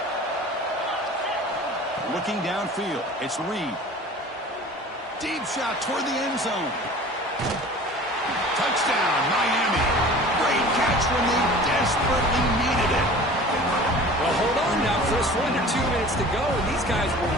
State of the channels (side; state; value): both; normal; correlation 0.42